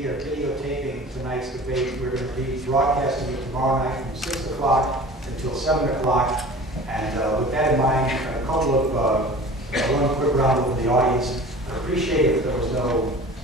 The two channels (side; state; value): both; normal; correlation 0.41